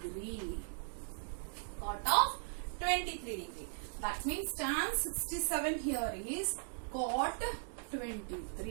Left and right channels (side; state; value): left; silent; digital silence